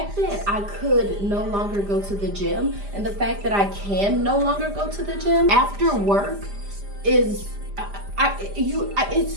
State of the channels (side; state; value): left; late; 5.0 ms